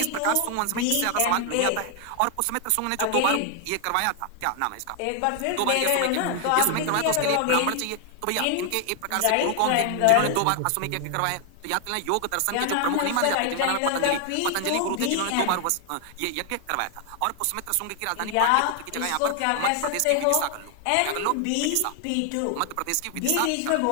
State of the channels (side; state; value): both; different; correlation 0.00